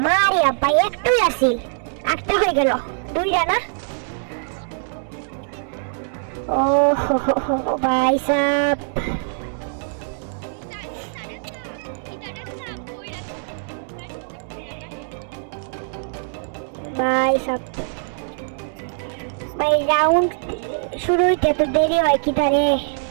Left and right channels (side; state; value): left; silent; 64 dB below the other